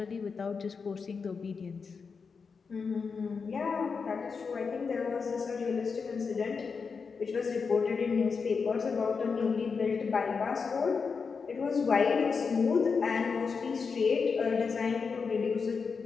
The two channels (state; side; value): quieter; right; 5.3 dB